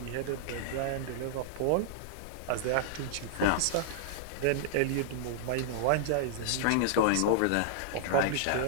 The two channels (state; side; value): different; both; correlation -0.01